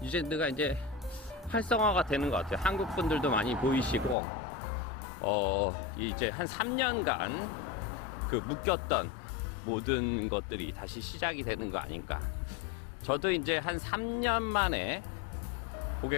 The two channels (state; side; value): drops out; right; at 4.2 s